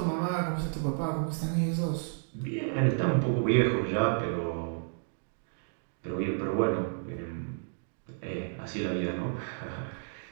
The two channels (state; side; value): silent; left; digital silence